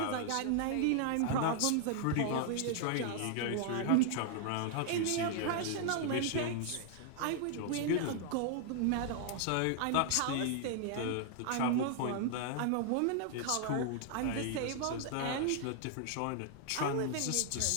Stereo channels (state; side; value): different; both; correlation 0.00